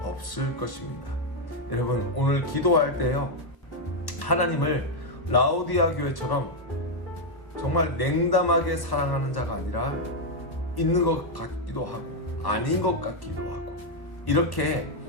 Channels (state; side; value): late; right; 1.0 ms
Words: 없을 것입니다. 여러분, 오늘 기도할 때요, 하나님을 라오디아 교회처럼 정말 냉담하게 사랑하는 자가 아니라 있는 것 같기도 하고 아닌 것 같기도 하고 이렇게